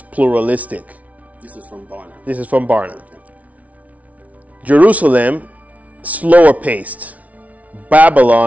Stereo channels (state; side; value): late; left; 0.069 ms